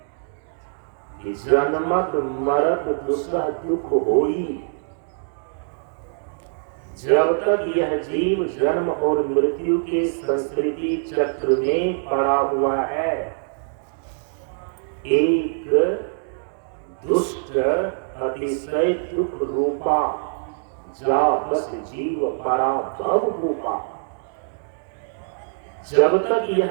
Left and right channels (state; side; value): silent; left; digital silence